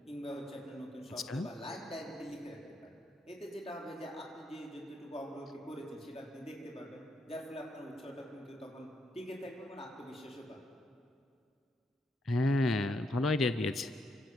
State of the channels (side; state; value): both; normal; correlation 0.78